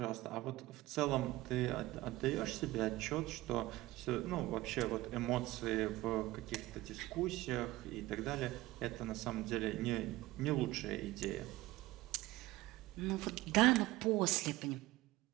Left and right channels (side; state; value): left; quieter; 18.3 dB